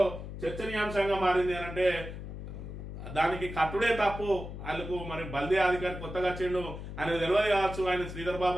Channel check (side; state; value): left; noise; hum, 9 dB below the sound